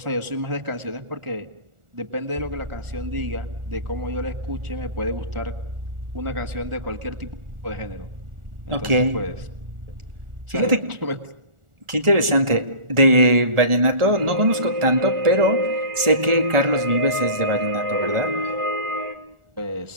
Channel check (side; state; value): left; late; 1.4 ms